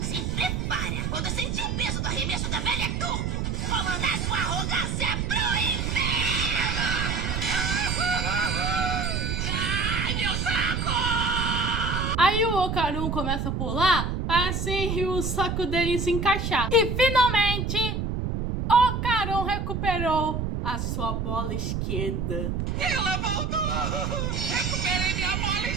Se prepara. Quando sentir o peso do arremesso da velha turbo, vou mandar sua arrogância pro inferno. Ai, meu saco! Aí o Okarun começa a pular para assim o saco dele se encaixar. E finalmente, Okarun recuperou a sua bola esquerda. Ela voltou. Recuperei minha bola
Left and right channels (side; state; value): right; noise; rumble, 1 dB below the sound